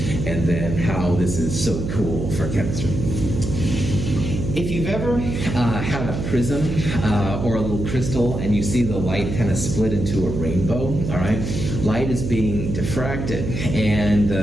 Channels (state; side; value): noise; right; hum, 4 dB below the sound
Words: and then how this is so cool for chemistry. If you've ever had a prism or a little crystal and you see the light kind of split into a rainbow, all right? Light is being diffracted, and